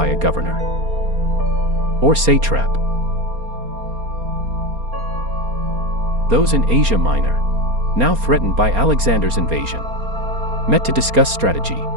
a governor, or satrap. Those in Asia Minor, now threatened by Alexander's invasion, met to discuss strategy.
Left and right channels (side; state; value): left; late; 4.3 ms